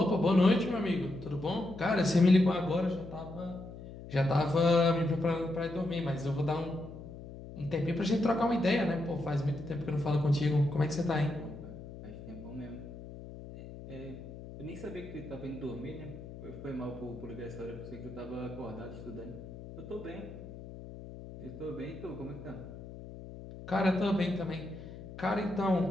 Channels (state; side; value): noise; left; hum, 13 dB below the sound